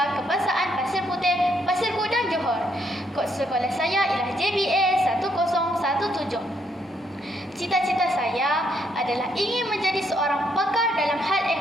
Kebangsaan Pasir Putih, Pasir Gudang, Johor. Kod sekolah saya ialah JBA 1017. Cita-cita saya adalah ingin menjadi seorang pakar dalam hal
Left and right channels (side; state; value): both; normal; correlation 0.73